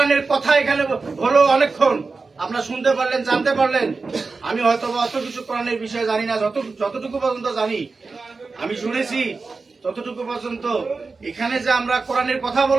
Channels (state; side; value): quieter; left; 4.2 dB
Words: কথা এখানে হলো অনেকক্ষণ আপনারা শুনতে পারলেন, জানতে পারলেন। আমি হয়তো অত কিছু কোরআনের বিষয়ে জানি না, যতটুকু পর্যন্ত জানি, আমি শুনেছি ততটুকু পর্যন্ত। এখানে যে আমরা কোরআনের কথা